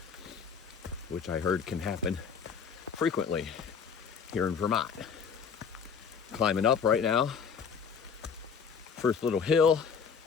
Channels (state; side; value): quieter; right; 6.3 dB